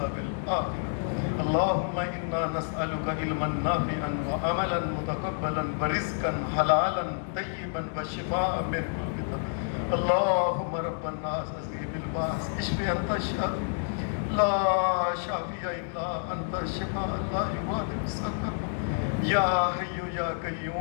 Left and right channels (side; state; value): right; silent; digital silence